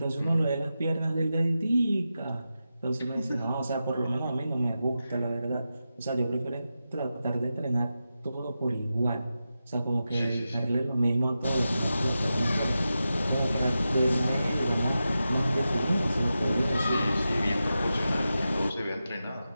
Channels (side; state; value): both; inverted; correlation -0.91